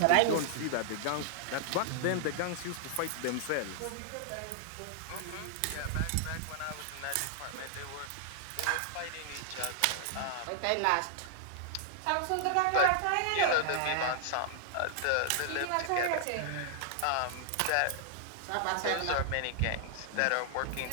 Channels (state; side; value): different; both; correlation -0.01